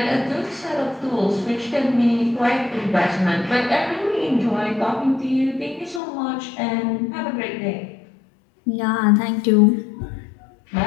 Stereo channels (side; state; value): right; drops out; at 6.0 s